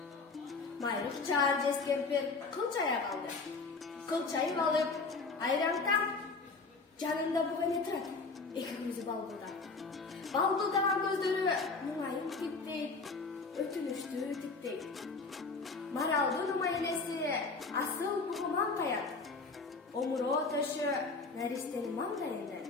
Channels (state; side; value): quieter; right; 4.0 dB